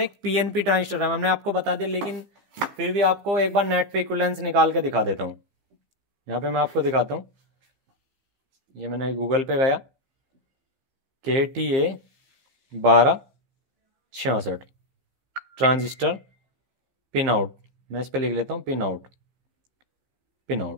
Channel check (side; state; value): left; late; 15 ms